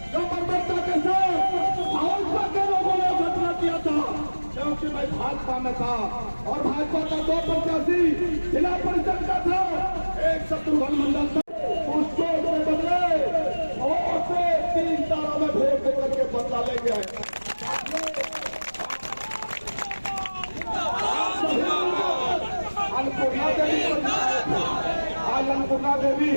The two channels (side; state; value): both; inverted; correlation -1.00